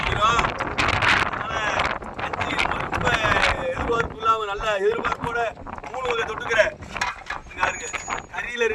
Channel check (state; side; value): identical; both; correlation 1.00